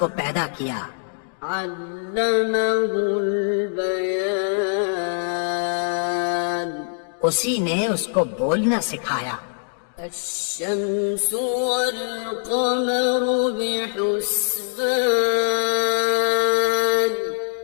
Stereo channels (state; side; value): silent; right; digital silence